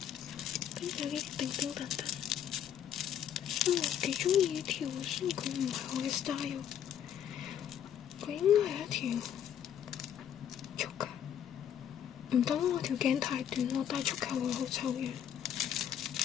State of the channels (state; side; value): quieter; right; 9.4 dB